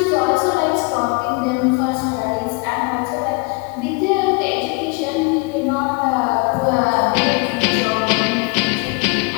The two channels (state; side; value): quieter; right; 28.5 dB